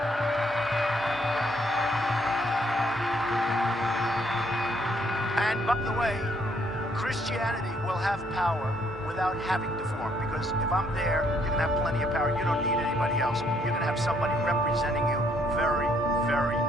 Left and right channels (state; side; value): normal; both; correlation 0.69